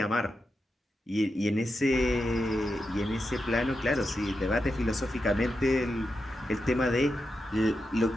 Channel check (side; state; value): both; normal; correlation 0.88